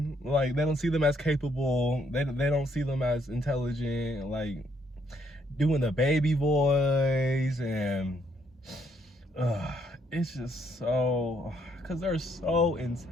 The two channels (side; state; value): both; normal; correlation 0.71